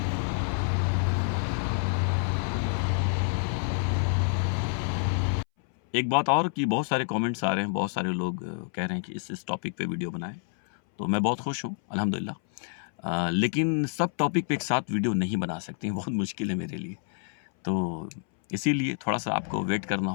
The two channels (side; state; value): right; silent; 59 dB below the other